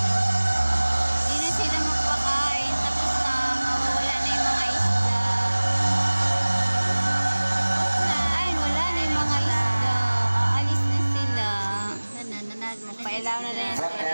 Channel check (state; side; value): inverted; both; correlation -1.00